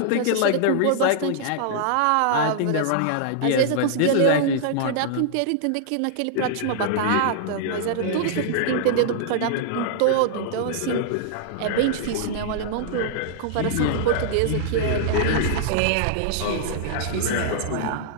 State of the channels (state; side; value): different; both; correlation -0.01